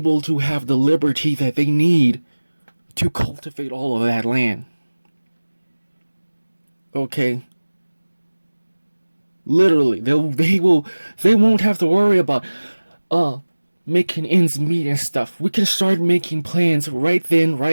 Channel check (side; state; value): both; inverted; correlation -1.00